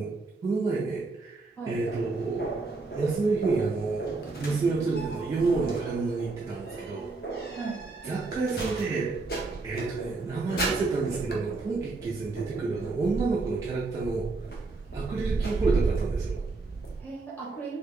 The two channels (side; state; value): left; quieter; 3.6 dB